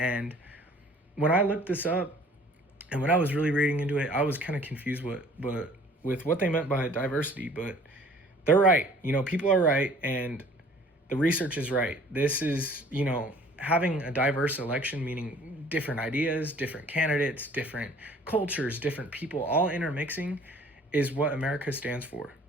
when I looked this up and when I was really reading into it, I was kind of confused with what they meant by diversity, but they're right. People are right, and the research is right. This is, having a diverse election, meaning different ideas, different candidates, different cultures, different people, all intermixing, is what America stands for.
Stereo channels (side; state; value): both; normal; correlation 0.52